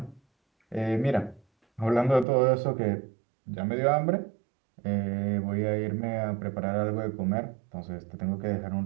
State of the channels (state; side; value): drops out; left; at 2.2 s